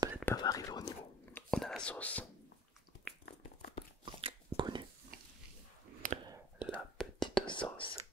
pas va arriver au niveau. On a la sauce connue, la petite sauce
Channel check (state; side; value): normal; both; correlation 0.49